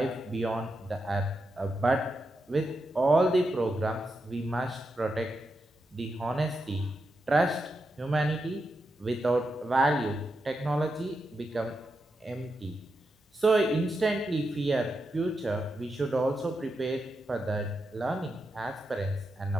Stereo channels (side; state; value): both; normal; correlation 0.86